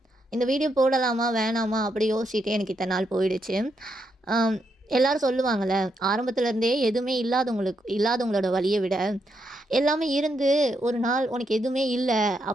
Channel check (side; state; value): both; normal; correlation 0.80